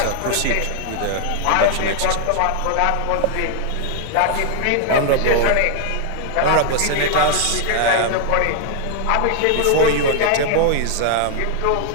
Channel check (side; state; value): both; different; correlation 0.00